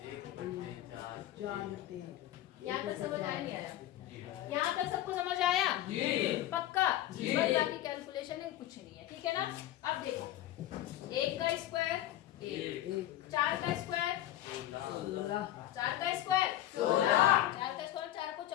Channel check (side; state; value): right; quieter; 13.6 dB